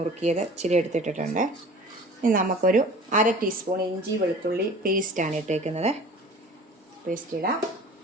ഇച്ചിരി എടുത്തിട്ടിട്ടുണ്ട്. ഇനി നമുക്കൊരു 1/2 ടീസ്പൂൺ ഇഞ്ചി വെളുത്തുള്ളി പേസ്റ്റാണ് ഇട്ടേക്കുന്നത്. പേസ്റ്റ് ഇടാം.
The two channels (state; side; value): normal; both; correlation 0.43